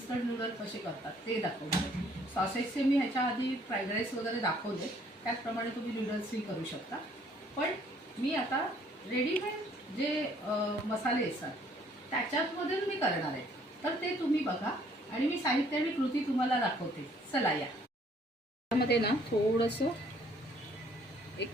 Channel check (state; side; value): normal; both; correlation 0.62